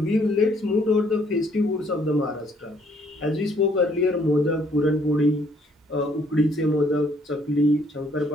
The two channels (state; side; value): normal; both; correlation 0.65